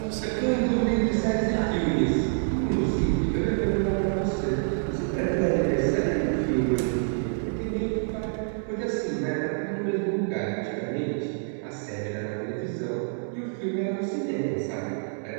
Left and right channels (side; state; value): left; silent; digital silence